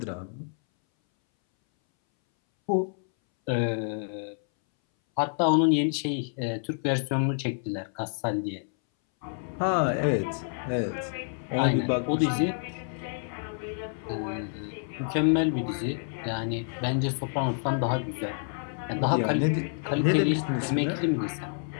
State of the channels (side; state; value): right; silent; 59 dB below the other